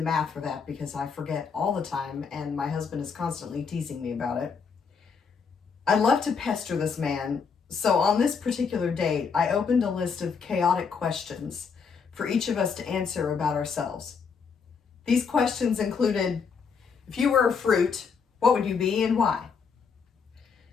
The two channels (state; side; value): quieter; right; 5.8 dB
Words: math for that because I forget all the time, and my husband is constantly teasing me about it. I love to pester this man, so on this particular date, I opened a list of chaotic questions for each of us to answer about ourselves. These questions included, if you were a fruit, what would you be and why?